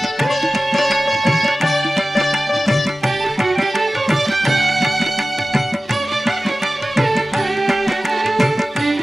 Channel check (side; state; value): both; normal; correlation 0.96